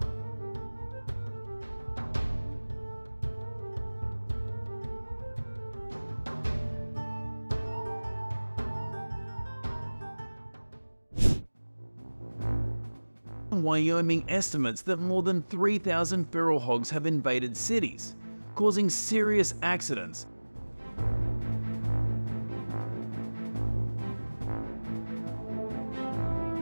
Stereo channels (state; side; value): inverted; both; correlation -1.00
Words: Wyoming estimates that more than 3,000 feral hogs have invaded cities, causing serious accidents.